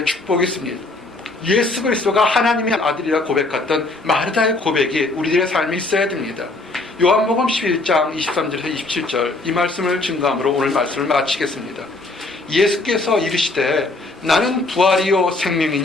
축복이 있습니다. 예수 그리스도가 하나님의 아들이라 고백했던 마르다의 고백이 우리들의 삶에 있어야 됩니다. 요한복음 11장 23절에서 27절 이 말씀을 증거함으로 오늘 말씀을 마치겠습니다. 예수께서 이르시되 나는 부활이요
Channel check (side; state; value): right; quieter; 3.2 dB